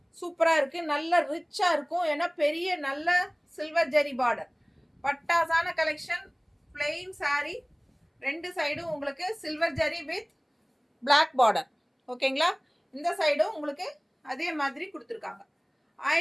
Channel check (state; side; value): identical; both; correlation 1.00